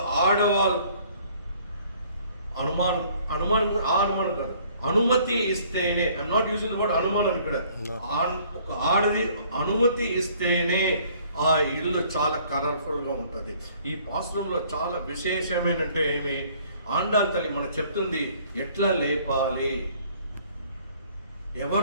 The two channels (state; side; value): inverted; both; correlation -0.58